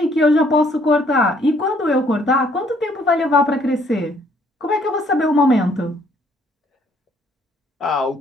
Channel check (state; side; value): normal; both; correlation 0.64